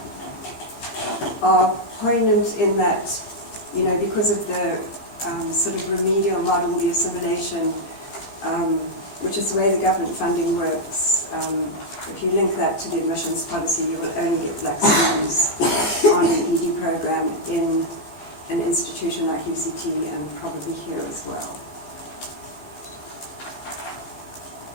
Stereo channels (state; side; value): late; right; 15 ms